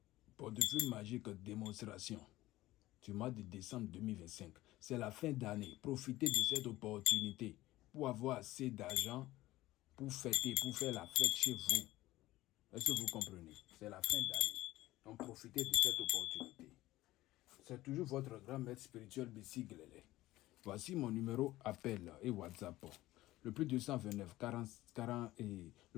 Portefeuille magique démonstration du mois de décembre 2025. C'est la fin d'année. Profitez de cette opportunité pour avoir assez d'argent pour fêter, pour faire la fête chez vous. Est-ce que vous comprenez? C'est la fin d'année. Donc profitez de cette opportunité. C'est toujours votre grand maître spirituel Bessie Glele. Voici mon numéro appel et WhatsApp. Le plus 229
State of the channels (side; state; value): right; quieter; 16.9 dB